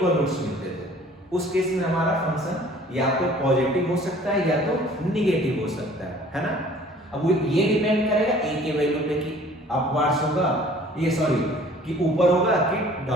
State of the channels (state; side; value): normal; both; correlation 0.52